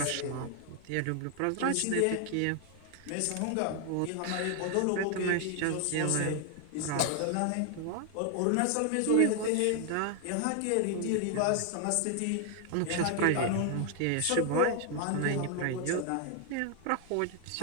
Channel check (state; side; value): different; both; correlation 0.00